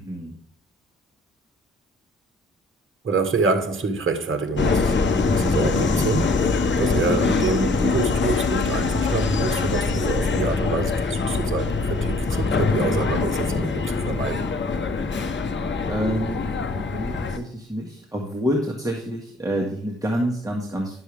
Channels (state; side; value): normal; both; correlation 0.56